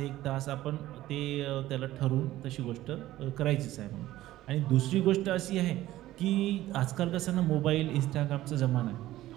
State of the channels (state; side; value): quieter; left; 15.2 dB